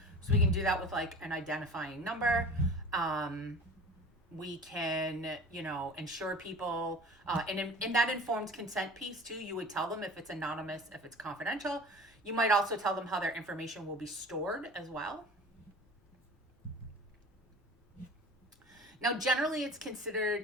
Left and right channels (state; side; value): normal; both; correlation 0.40